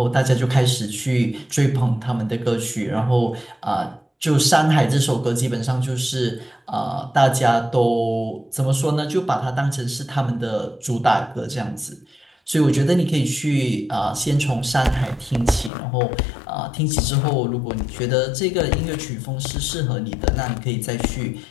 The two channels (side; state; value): right; drops out; at 15.7 s